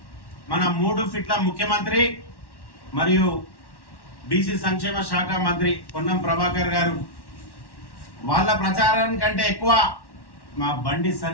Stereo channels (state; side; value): late; right; 1.1 ms